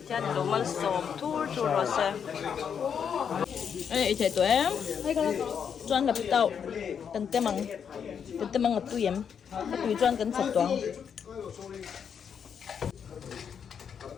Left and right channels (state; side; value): quieter; right; 7.4 dB